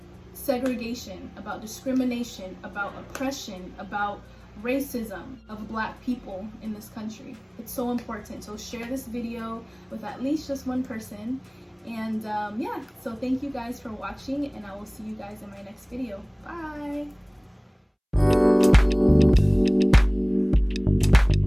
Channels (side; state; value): both; identical; correlation 1.00